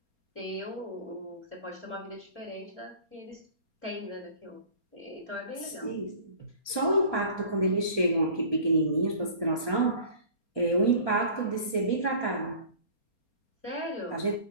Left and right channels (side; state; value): right; late; 4.3 ms